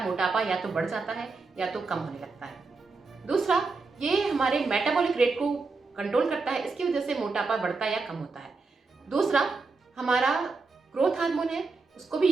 या तो बढ़ जाता है या तो कम होने लगता है। दूसरा, ये हमारे मेटाबॉलिक रेट को कंट्रोल करता है, इसकी वजह से मोटापा बढ़ता है या कम होता है। दूसरा, हमारा ग्रोथ हार्मोन है उसको भी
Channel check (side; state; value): left; quieter; 4.1 dB